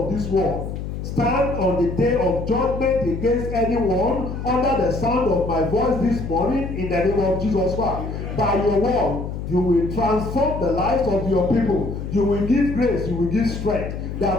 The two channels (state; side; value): noise; left; hum, 6 dB below the sound